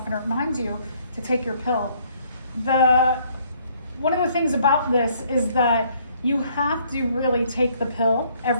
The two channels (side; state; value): both; inverted; correlation -0.64